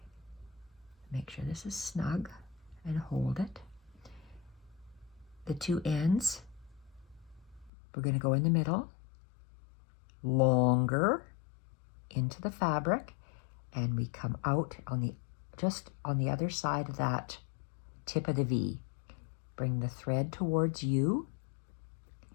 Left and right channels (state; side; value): drops out; right; at 7.7 s